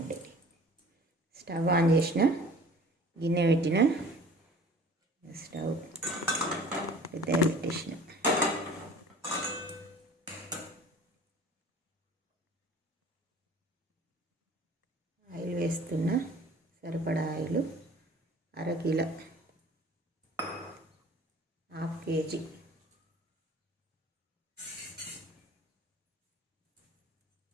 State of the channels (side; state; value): both; normal; correlation 0.47